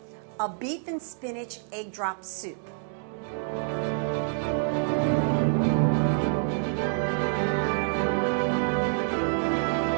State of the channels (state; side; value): silent; left; 60 dB below the other